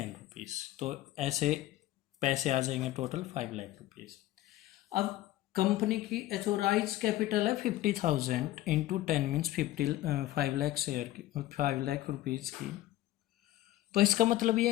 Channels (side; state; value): right; quieter; 15.2 dB